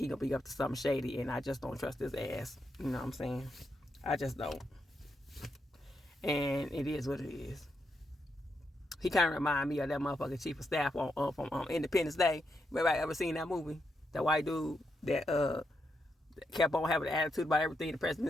gonna be up to something shady, and I just don't trust his ass. You know what I'm saying? I just don't. And it is what it is. He kind of remind me of that motherfucking chief of staff from Independence Day. Everybody ever seen that movie? That white dude that kept on having an attitude about everything the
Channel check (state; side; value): normal; both; correlation 0.82